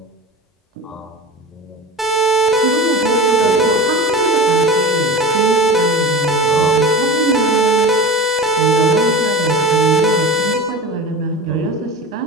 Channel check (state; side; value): normal; both; correlation 0.31